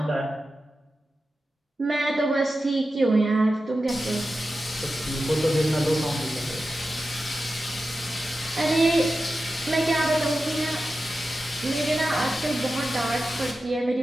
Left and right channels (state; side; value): normal; both; correlation 0.92